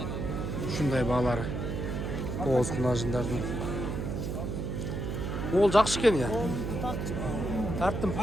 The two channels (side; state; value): right; noise; hum, 3 dB below the sound